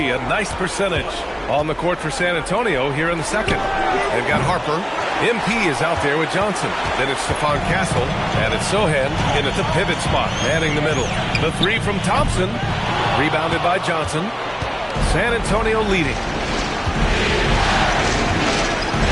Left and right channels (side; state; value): both; identical; correlation 1.00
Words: A nice percentage on the court for San Antonio here in the second. They've got Harper. MP is out there with Johnson. Then it's Stephon Castle. And it's Sohan in at the pivot spot, manning the middle. The 3 from Thompson. Rebounded by Johnson. San Antonio leading.